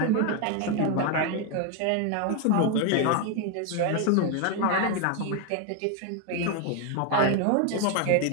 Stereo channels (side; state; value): both; different; correlation 0.01